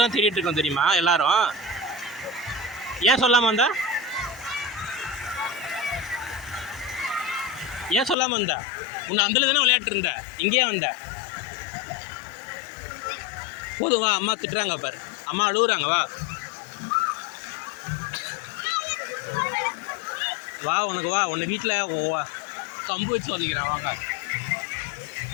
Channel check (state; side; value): drops out; right; at 8.2 s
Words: தேடிட்டு இருக்கோம் தெரியுமா எல்லாரும்? ஏன் சொல்லாமல் வந்தா? ஏன் சொல்லாமல் வந்தா? உன்னை அந்தல தானே விளையாட்டு இருந்த, இங்கேயே வந்த. போதும் வா, அம்மா திட்டுறாங்க பாரு, அம்மா அழுகுறாங்க, வா வா. உனக்கு வா, உன்னை வீட்டில் கம்பு வச்சு ஒதுக்கிறேன், வாங்க.